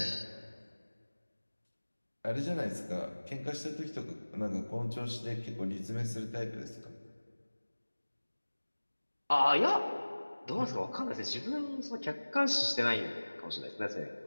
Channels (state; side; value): inverted; both; correlation -1.00